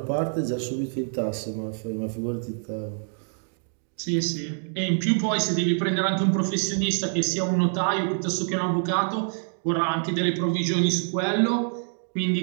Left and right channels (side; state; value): left; silent; 61 dB below the other